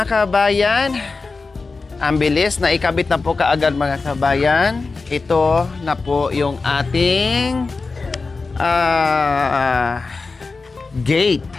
kabayan. Ang bilis na ikabit na po kaagad, mga kabayan. Ito na po yung ating gate.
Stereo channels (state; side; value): quieter; right; 4.1 dB